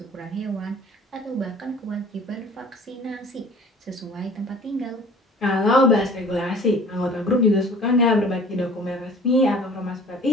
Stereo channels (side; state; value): both; normal; correlation 0.48